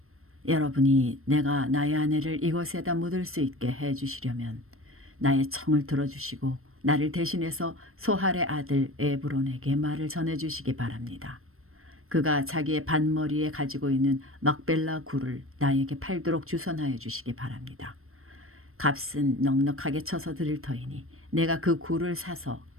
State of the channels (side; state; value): left; late; 0.62 ms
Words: 여러분이 내가 나의 아내를 이곳에다 묻을 수 있게 해주시려면 나의 청을 들어주시고 나를 대신해서 소할의 아들 에브론에게 말을 전해주시기 바랍니다. 그가 자기의 반머리에 가지고 있는 막벨라 굴을 나에게 팔도록 주선하여 주시기 바랍니다. 값은 넉넉하게 쳐서 드릴 터이니 내가 그 굴을 사서